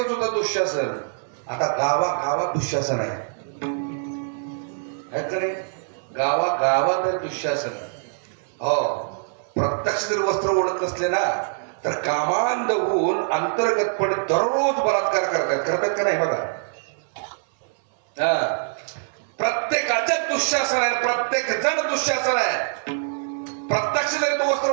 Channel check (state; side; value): silent; left; 63 dB below the other